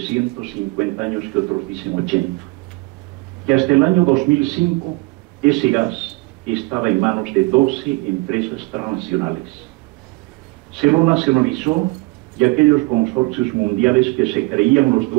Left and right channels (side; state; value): left; quieter; 25.2 dB